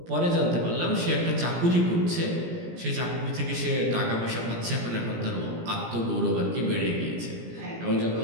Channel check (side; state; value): left; late; 17 ms